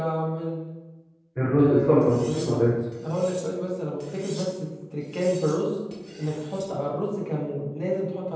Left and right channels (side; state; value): both; identical; correlation 1.00